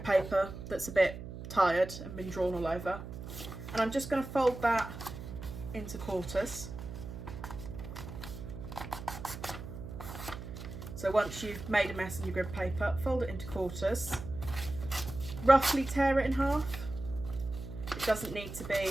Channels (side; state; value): right; noise; hum, 10 dB below the sound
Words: paper that's a bit tired and been drawn all over, and I'm just going to fold that into quarters. So once you've made a mess in your grid paper, fold it into quarters, roughly tear it in half. It doesn't need to